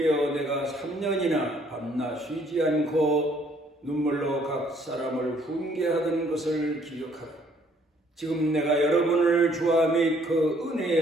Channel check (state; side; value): normal; both; correlation 0.63